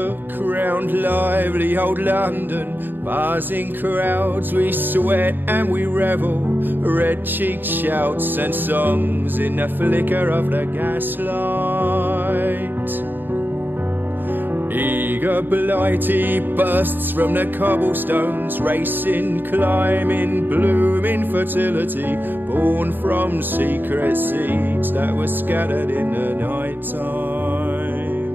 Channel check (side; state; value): left; late; 0.093 ms